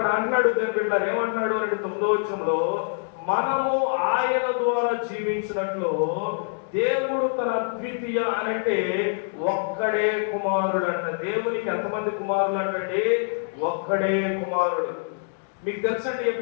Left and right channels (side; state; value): right; silent; digital silence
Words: అంటున్నాడు దేవుని బిడ్డ, ఏమంటున్నాడు అంటే 9వ వచనంలో, మనము ఆయన ద్వారా జీవించినట్లు దేవుడు తన ద్వితీయ అనంటే ఒక్కడే కుమారుడు అంట. దేవునికి ఎంతమంది కుమారులు అంటే ఒక్కడే కుమారుడు. మీకు తెలుసండి,